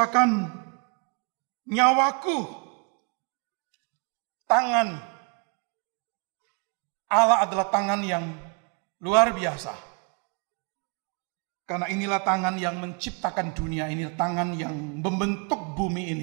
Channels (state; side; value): quieter; left; 35.3 dB